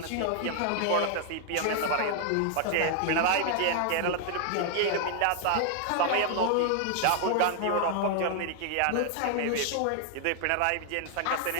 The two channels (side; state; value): both; different; correlation 0.00